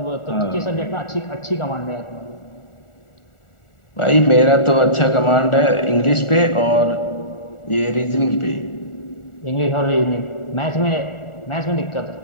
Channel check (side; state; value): right; late; 1.4 ms